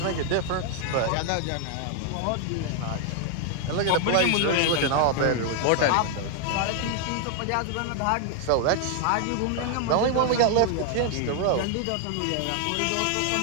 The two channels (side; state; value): both; different; correlation 0.00